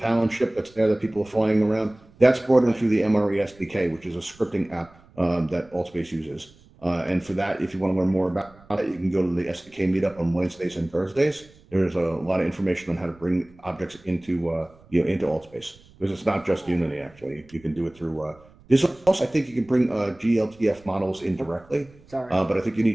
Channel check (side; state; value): right; noise; rumble, 27 dB below the sound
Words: ship that's there that people are flying around, that's brought in through the MRE SDK, which is a scripting app that Altspace uses. And for that, if you want to learn more about it, you can go to the SDK meetup on Wednesdays and Thursdays. There's a lot of information on how to bring objects into into Altspace, because it's not just Unity. Actually, you can do it through. This also, I think you can bring GLTF models in directly, Sorry. but I think you